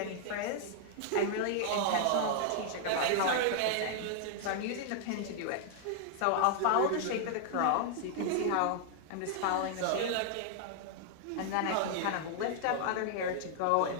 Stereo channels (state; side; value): different; both; correlation -0.01